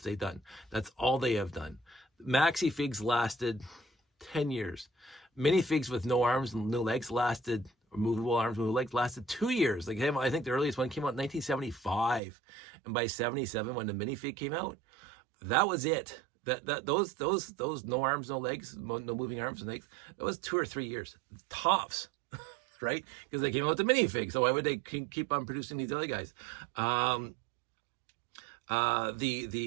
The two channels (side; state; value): left; drops out; at 12.2 s